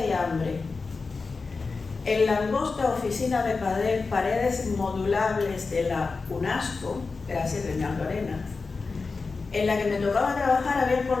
y hambre. En la angosta oficina de paredes modulables de la UNESCO, gracias Reinaldo Arenas, en la que me tocaba trabajar, había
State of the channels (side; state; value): right; quieter; 4.3 dB